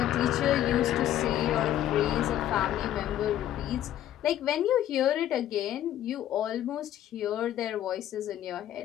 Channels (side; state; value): right; quieter; 12.0 dB